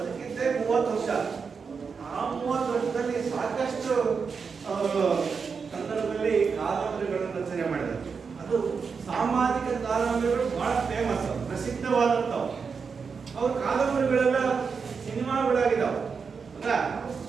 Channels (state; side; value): quieter; left; 5.5 dB